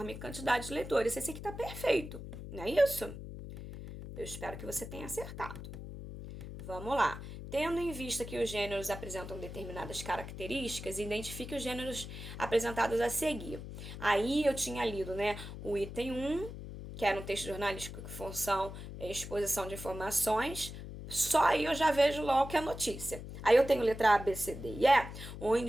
quantidade de leitores. Esse aqui tá perfeito, não é isso? Eu espero que você tenha acertado. Vamos lá. Tendo em vista que os gêneros apresentam determinadas características, identifique os gêneros apresentados a seguir. Aí eu tinha lido, né, o item 1, que era um texto jornalístico que função exposição de informações, só aí eu já vejo logo que é notícia. Aí eu tenho letra A, B, C, D e E,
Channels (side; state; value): left; noise; hum, 10 dB below the sound